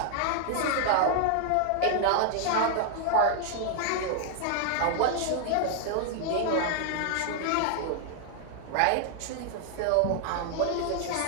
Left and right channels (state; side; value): different; both; correlation 0.00